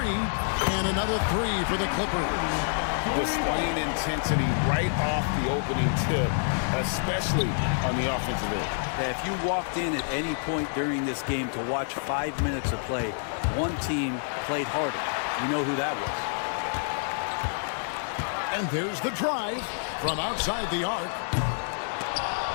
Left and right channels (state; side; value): silent; right; digital silence